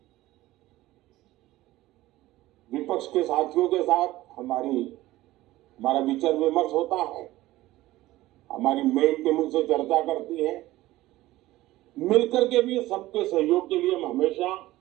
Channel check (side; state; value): left; quieter; 16.9 dB